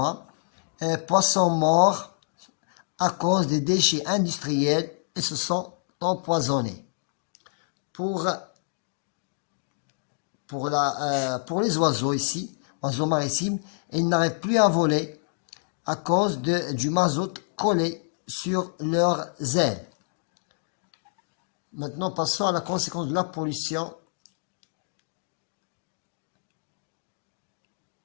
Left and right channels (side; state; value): right; silent; digital silence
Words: poissons morts à cause des déchets industriels et se sont empoisonnés. Pour les oiseaux ici, oiseaux maritimes, ils n'arrivent plus à voler à cause du mazout collé sur leurs ailes. Maintenant, passons à la conséquence de la pollution.